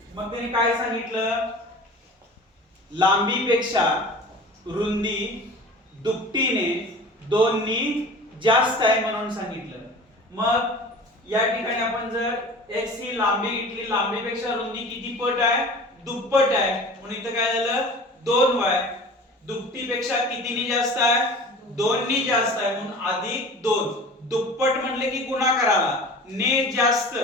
मग त्याने काय सांगितलं, लांबीपेक्षा रुंदी दुपटीने 2 नी जास्त आहे म्हणून सांगितलं. मग या ठिकाणी आपण जर x ही लांबी घेतली, लांबीपेक्षा रुंदी किती पट आहे, दुप्पट आहे म्हणून इथं काय झालं 2y. दुपटीपेक्षा कितीनी जास्त आहे, 2 नी जास्त आहे म्हणून अधिक 2. दुप्पट म्हणले की गुणाकाराला, ने जास्त,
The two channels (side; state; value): both; normal; correlation 0.39